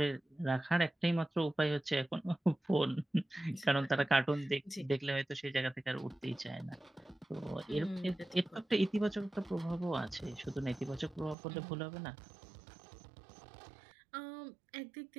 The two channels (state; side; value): drops out; left; at 11.4 s